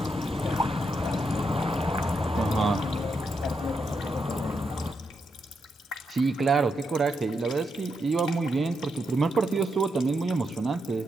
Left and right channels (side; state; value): both; normal; correlation 0.82